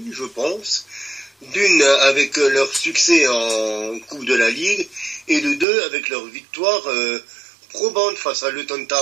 je pense. D'une, avec leur succès en Coupe de la Ligue, et de deux, avec leur victoire probante face à Luton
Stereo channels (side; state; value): left; drops out; at 5.7 s